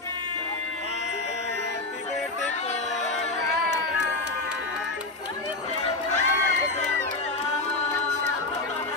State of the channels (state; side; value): quieter; right; 3.2 dB